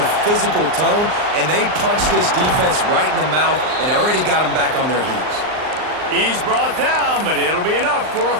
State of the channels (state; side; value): late; left; 39 ms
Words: physical tone, and they punched this defense right in the mouth and already got them back on their heels. He's brought down, but it'll be enough for a